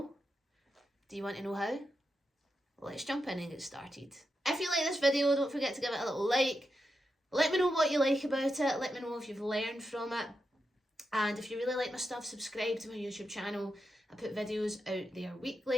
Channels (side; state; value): both; normal; correlation 0.86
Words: Do you want to know how? Let's jump in and get started. If you like this video, don't forget to give it a little like. Let me know what you like about it. Let me know if you've learned from it. And if you really like my stuff, subscribe to my YouTube channel. I put videos out there